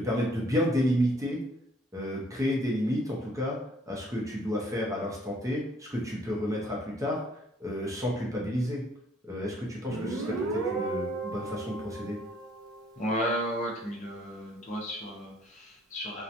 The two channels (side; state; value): both; normal; correlation 0.63